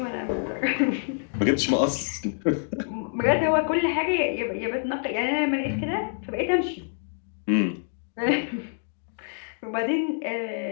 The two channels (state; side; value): silent; right; digital silence